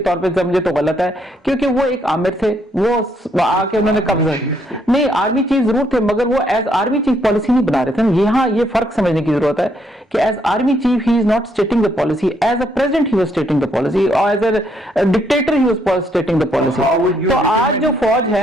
طور پہ سمجھے تو غلط ہے, کیونکہ وہ ایک آمر تھے, وہ آ کے انہوں نے قبضہ نہیں, آرمی چیف ضرور تھے, مگر وہ ایز آرمی چیف پالیسی نہیں بنا رہے تھے. یہاں یہ فرق سمجھنے کی ضرورت ہے کہ as army chief he is not stating the policy, as a president he was stating the policy, اور as a dictator he was stating the policy. تو آج جو فوج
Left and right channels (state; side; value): normal; both; correlation 0.72